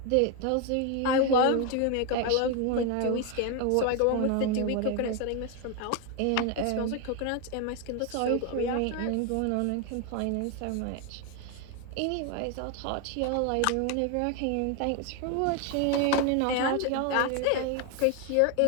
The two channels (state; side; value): different; both; correlation 0.01